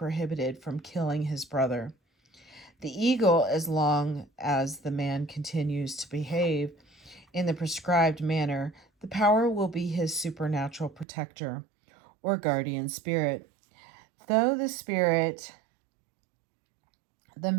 from killing his brother. The eagle, as long as the man continues to behave in the prescribed manner, the power will be his supernatural protector or guardian spirit. Though the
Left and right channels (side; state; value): left; drops out; at 11.1 s